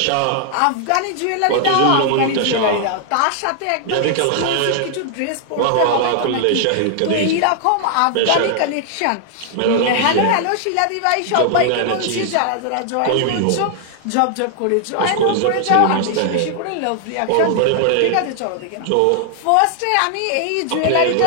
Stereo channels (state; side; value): different; both; correlation 0.00